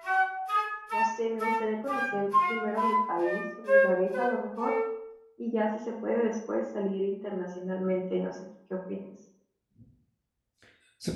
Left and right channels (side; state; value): both; identical; correlation 1.00